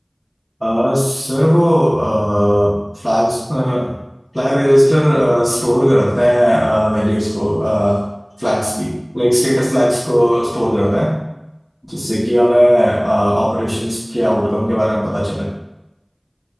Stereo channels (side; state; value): both; identical; correlation 1.00